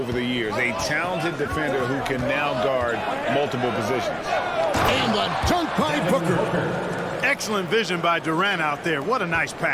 the years. A talented defender who can now guard multiple positions. And the dunk by Booker. Excellent vision by Durant out there. What a nice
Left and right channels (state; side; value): identical; both; correlation 1.00